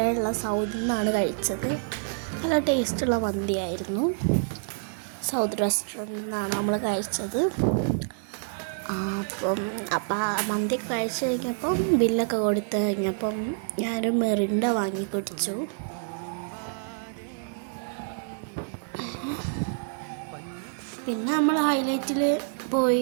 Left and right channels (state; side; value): silent; left; digital silence